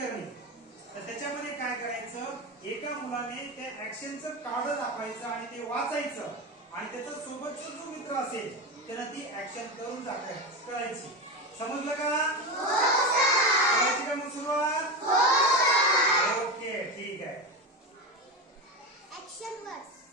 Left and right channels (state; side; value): normal; both; correlation 0.19